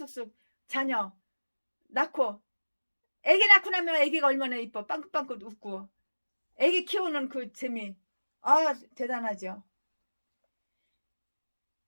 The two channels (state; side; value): inverted; both; correlation -1.00